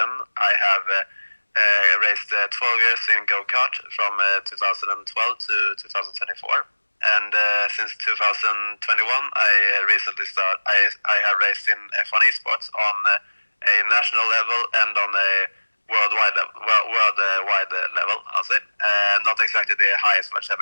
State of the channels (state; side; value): inverted; both; correlation -1.00